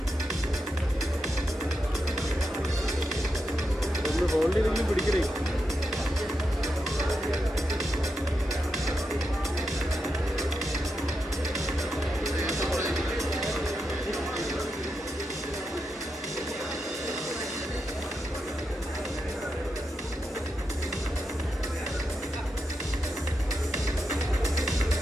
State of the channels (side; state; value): both; normal; correlation 0.86